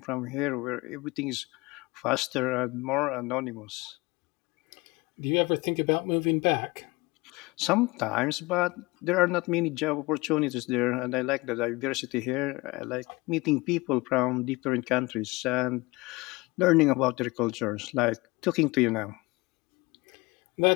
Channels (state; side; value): quieter; right; 23.4 dB